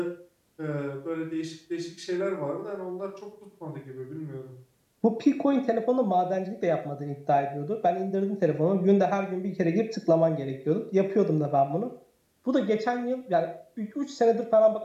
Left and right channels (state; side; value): identical; both; correlation 1.00